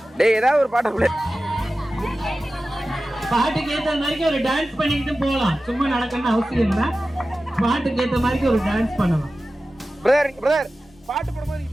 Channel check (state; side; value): normal; both; correlation 0.95